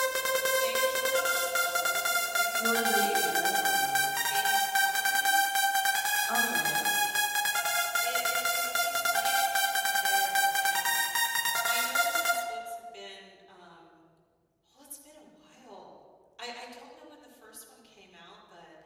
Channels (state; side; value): identical; both; correlation 1.00